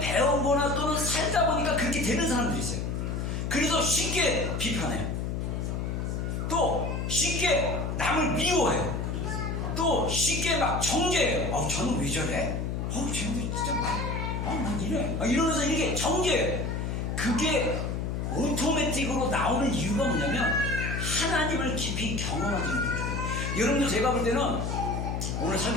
또는 살다 보니까 그렇게 되는 사람들이 있어요. 그래서 쉽게 비판해요. 또 쉽게 남을 미워해요. 또 쉽게 막 정죄해요. 저는 왜 저래? 쟤는 진짜 난 이래. 이러면서 이렇게 정죄해요. 그게 오토매틱으로 나오는 이유가 뭐냐면 하나님을 깊이 경험하지 못해요. 여러분들 제가 볼 때는 오늘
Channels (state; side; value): noise; left; hum, 2 dB below the sound